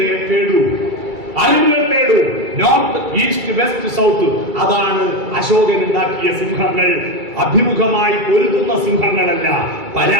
തേടൂ, അറിവുകൾ തേടൂ. North, east, west, south. അതാണ് അശോകൻ ഉണ്ടാക്കിയ സിംഹങ്ങൾ. അഭിമുഖമായി പൊരുതുന്ന സിംഹങ്ങളല്ല,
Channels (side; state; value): left; late; 2.3 ms